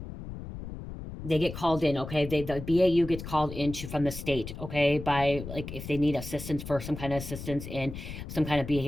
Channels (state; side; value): noise; left; rumble, 10 dB below the sound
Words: They get called in, okay? The BAU gets called into from the state, okay? By like if they need assistance for some kind of assistance in some kind of